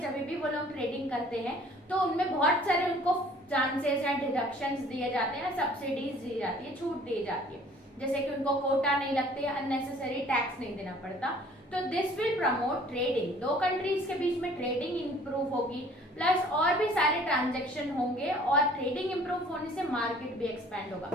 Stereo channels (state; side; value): normal; both; correlation 0.54